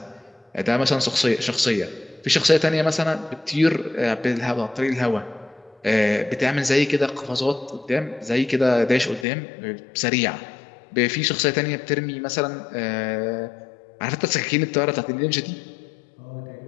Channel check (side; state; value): right; drops out; at 9.2 s